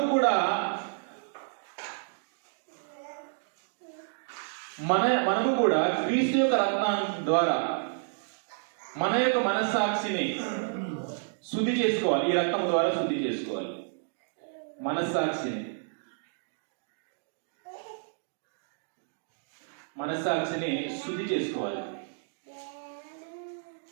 కూడా క్రీస్తు యొక్క రక్తం ద్వారా మన యొక్క మనస్సాక్షిని శుద్ధి చేసుకోవాలి. ఈ రక్తం ద్వారా శుద్ధి చేసుకోవాలి మనస్సాక్షిని శుద్ధి చేసుకోవాలి.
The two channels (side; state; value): left; silent; digital silence